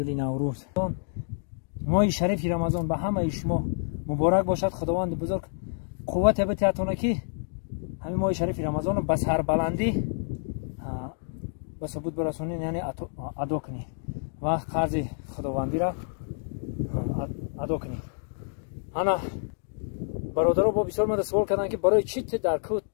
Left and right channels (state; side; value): silent; right; digital silence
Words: ماه شریف رمضان به همه شما مبارک باشد خداوند بزرگ قوت بتیاتونه که همین ماه شریف رمضان به سر بلندی به ثبوت برسونین یعنی ادا کنید و قرض خداوندی را ادا کنید انا برادرها با بسیار من سوال کردن که برای چی در کوت